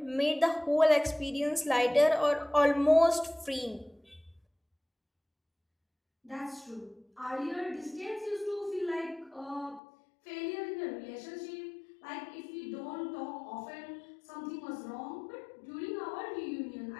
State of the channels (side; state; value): right; drops out; at 9.8 s